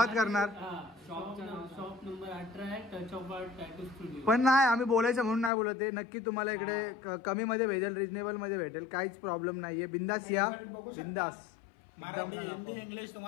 करणार. शॉप नंबर 18 आहे, touch of art tattoo studio. पण नाही, आम्ही बोलायचं म्हणून नाही बोलत आहे. नक्की तुम्हाला इकडे कमी मध्ये भेटेल, रिजनेबल मध्ये भेटेल, काहीच प्रॉब्लेम नाहीये. बिंदास या, बिंदास. मराठी, हिंदी, इंग्लिश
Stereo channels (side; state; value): right; drops out; at 5.5 s